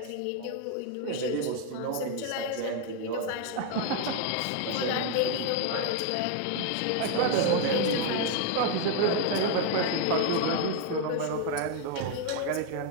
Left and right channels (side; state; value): both; different; correlation 0.01